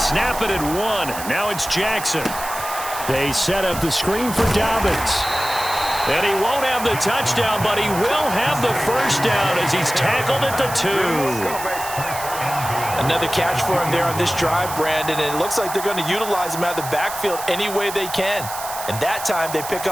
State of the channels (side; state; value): right; noise; hiss, 10 dB below the sound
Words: it at 1. Now it's Jackson. They set up the screen for Dobbins. And he won't have the touchdown, but he will have the first down as he's tackled at the 2. Another catch for him there on this drive, Brandon, and it looks like they're going to utilize him out of the backfield any way they can. And that time they pick